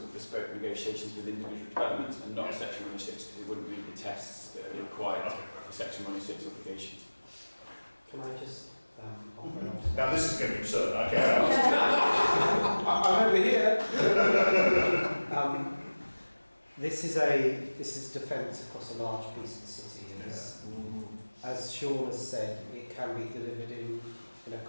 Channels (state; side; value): inverted; both; correlation -1.00